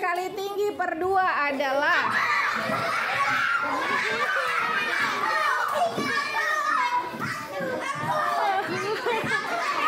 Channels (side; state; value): both; identical; correlation 1.00